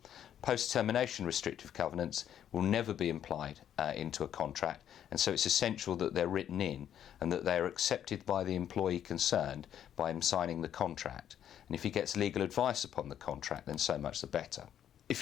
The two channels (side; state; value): right; quieter; 10.0 dB